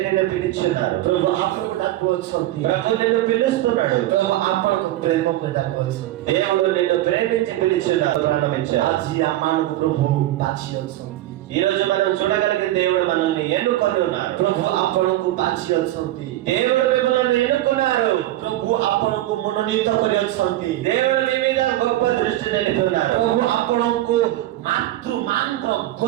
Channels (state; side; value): quieter; left; 15.2 dB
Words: నిన్ను పిలుచున్నారు. प्रभु आपन को डाको छथि ప్రభు నిన్ను పిలుస్తున్నాడు. प्रभु आपन को प्रेम करे राखो छथि దేవుడు నిన్ను ప్రేమించి పిలుచున్నాడు, ప్రాణమిచ్చాడు. आज आमान को प्रभु बाछियो छथि ఈ రోజు మనం చూడగలిగిన దేవుడు మనల్ని ఎన్నుకొని ఉన్నారు. प्रभु आपन को बाछियो छथि దేవుడు మిమ్మల్ని ఎన్నుకున్నారు. प्रभु आपन को मनोनीत करे छथि దేవుడు మీ మీద గొప్ప దృష్టి నిలుపుతున్నారు. प्रभु आपन को मातृ मात्र